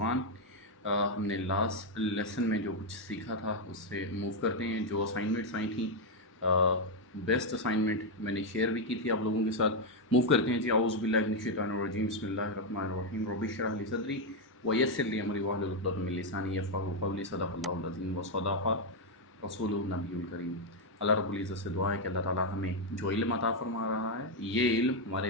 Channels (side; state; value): both; normal; correlation 0.02